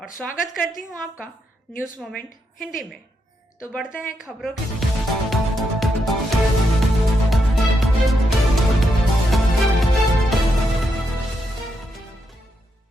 स्वागत करती हूँ आपका न्यूज़ मोमेंट हिंदी में। तो बढ़ते हैं खबरों की।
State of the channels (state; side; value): normal; both; correlation 0.81